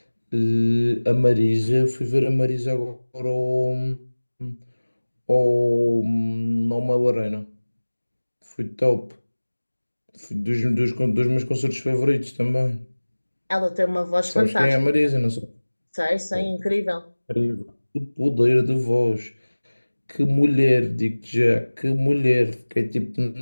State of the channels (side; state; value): both; inverted; correlation -1.00